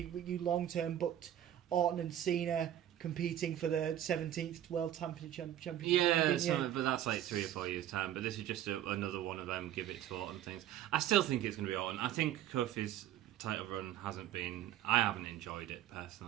long term booked Orton and Cena competing for the 17th World Championship. But that's like 3 or 4 years' time. But this is just another one of them give it to Orton things. I still think it's going to be Orton. I think Kofi's title run I haven't enjoyed it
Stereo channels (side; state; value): left; quieter; 11.6 dB